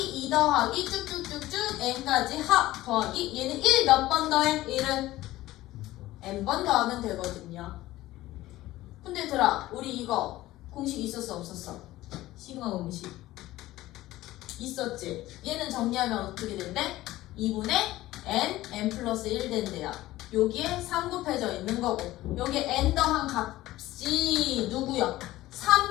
2 더하기 쭉쭉쭉쭉 n까지 합 더하기 얘는 1 몇 번 더해? 1은 n번 더하면 되거든요. 근데 얘들아 우리 이거 공식 있었어 없었어? 시그마 공식 있었지? 얘는 정리하면 어떻게 된대? 2분의 n 플러스 1 된대요. 여기에 3 곱해져 있는 거고 여기에 n 더한 값이 누구야?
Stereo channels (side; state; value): right; quieter; 16.4 dB